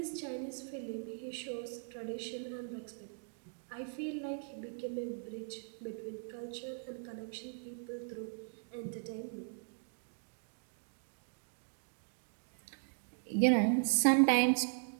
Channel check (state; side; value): silent; left; digital silence